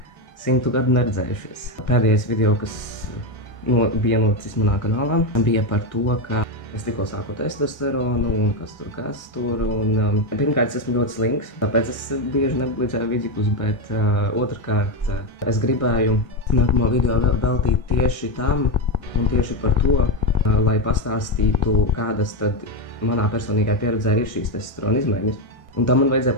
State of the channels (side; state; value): right; late; 1.6 ms